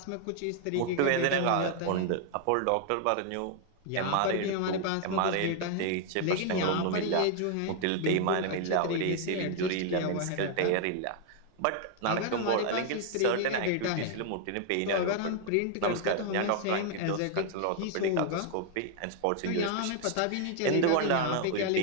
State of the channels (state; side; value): different; both; correlation 0.00